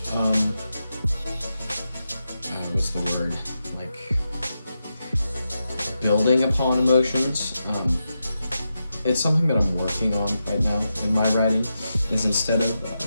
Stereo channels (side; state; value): both; inverted; correlation -0.88